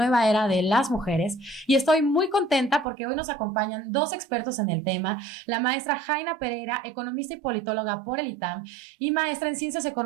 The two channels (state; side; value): drops out; left; at 2.9 s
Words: era de las mujeres. Y estoy muy contenta porque hoy nos acompañan dos expertos en el tema, la maestra Jaina Pereira, economista y politóloga por el ITAM y maestra en Ciencias